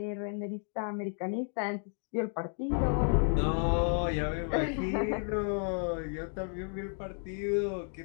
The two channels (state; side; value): silent; right; 56 dB below the other